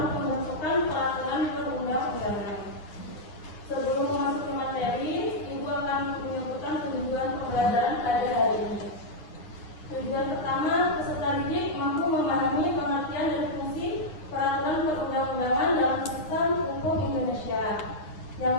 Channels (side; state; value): right; late; 9.8 ms